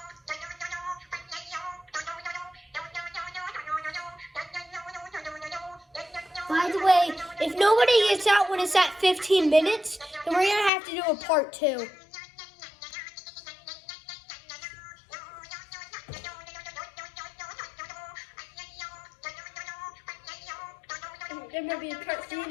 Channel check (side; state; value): right; drops out; at 10.7 s